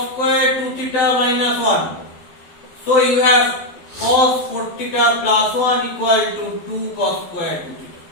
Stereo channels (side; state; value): right; late; 12 ms